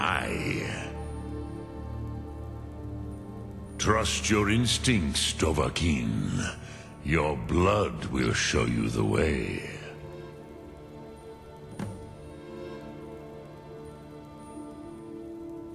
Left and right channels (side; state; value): both; identical; correlation 1.00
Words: Trust your instincts, Dovahkiin. Your blood will show you the way.